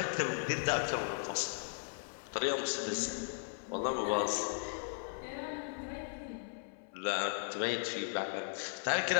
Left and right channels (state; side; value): silent; right; 53 dB below the other